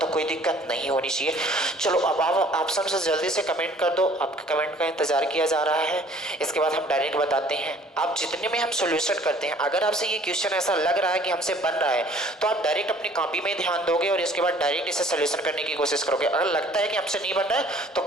कोई दिक्कत नहीं होनी चाहिए। चलो अब आप ऑप्शन से जल्दी से कमेंट कर दो, आपके कमेंट का इंतजार किया जा रहा है। इसके बाद हम डायरेक्ट बताते हैं। आप जितने में हम सॉल्यूशन करते हैं, अगर आपसे ये क्वेश्चन ऐसा लग रहा है कि हमसे बन रहा है तो आप डायरेक्ट अपनी कॉपी में ध्यान दोगे और इसके बाद डायरेक्ट इसे सॉल्यूशन करने की कोशिश करोगे। अगर लगता है कि हमसे नहीं बन रहा है तो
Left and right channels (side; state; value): both; normal; correlation 0.54